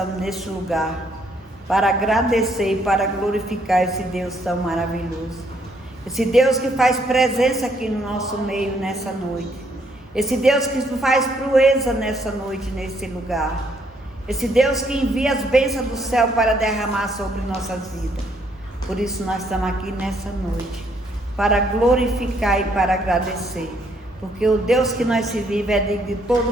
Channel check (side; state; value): both; normal; correlation 0.70